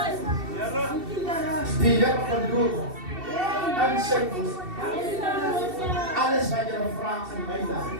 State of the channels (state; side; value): late; left; 2.7 ms